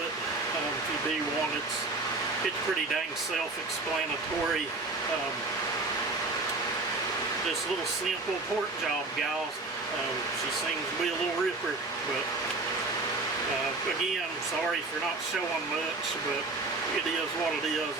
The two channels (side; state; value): left; quieter; 3.4 dB